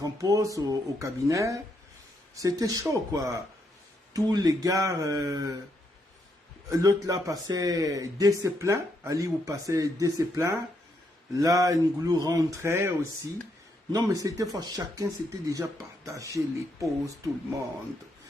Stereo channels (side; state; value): both; normal; correlation 0.77